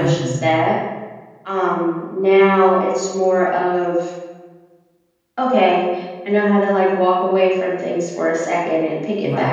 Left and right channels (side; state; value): both; identical; correlation 1.00